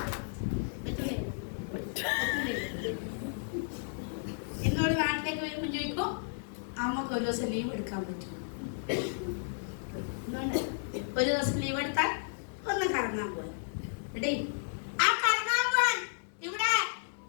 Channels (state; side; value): silent; right; digital silence